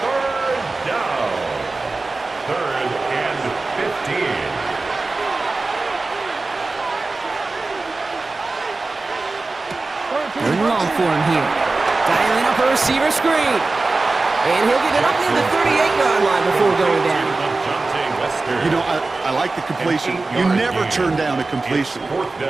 3rd down. 3rd and 15. Third and long for him here. Dialing up a receiver screen. And he'll get it up near the 38-yard line before going down. You know, I like the completion. You never turn down a completion.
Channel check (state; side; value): quieter; left; 3.5 dB